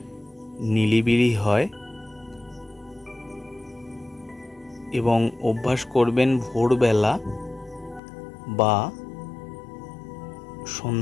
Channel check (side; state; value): right; drops out; at 8.0 s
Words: নিরিবিলি হয় এবং অভ্যাস করবেন ভোরবেলা বা